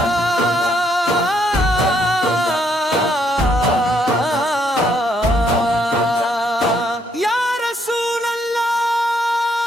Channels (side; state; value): both; normal; correlation 0.71